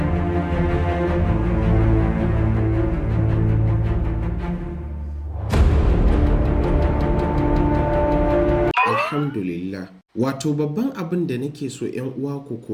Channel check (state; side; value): identical; both; correlation 1.00